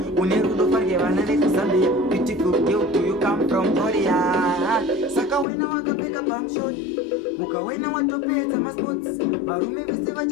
unerudo farge vana vekuzambia beautiful girl do you come from Korea saka wena wakapfeka pamshot ukawena watopedza masports varume vese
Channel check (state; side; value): drops out; right; at 5.5 s